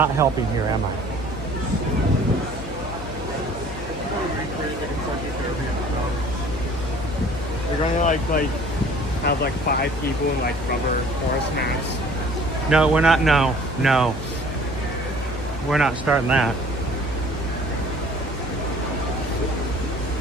helping here, am I? We're going to like have like 5 people in like rubber horse masks. No, we're not. No. We're not starting that.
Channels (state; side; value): noise; left; hum, 10 dB below the sound